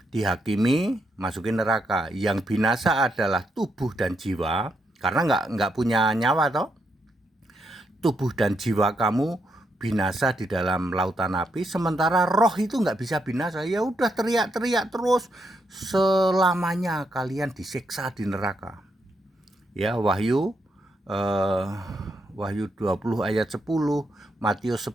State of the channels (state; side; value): normal; both; correlation 0.79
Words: dihakimi, masukin neraka. Yang binasa adalah tubuh dan jiwa, karena nggak punya nyawa toh. Tubuh dan jiwa kamu binasa di dalam lautan api, sementara roh itu nggak bisa binasa. Ya udah teriak-teriak terus, selamanya kalian disiksa di neraka. Ya, Wahyu 20 ayat 10, Matius